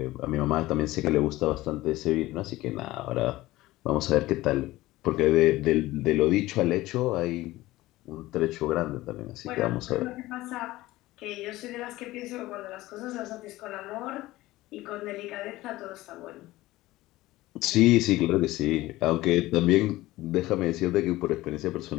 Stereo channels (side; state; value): right; quieter; 17.7 dB